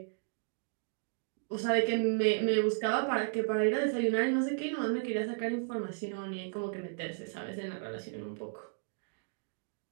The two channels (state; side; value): silent; left; digital silence